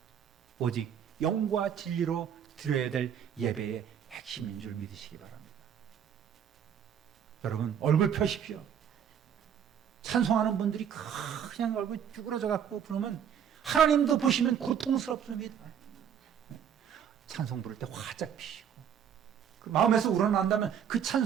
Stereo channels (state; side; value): quieter; left; 8.5 dB